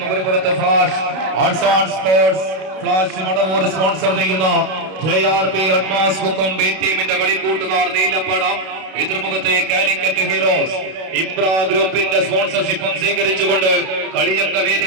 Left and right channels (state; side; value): late; left; 32 ms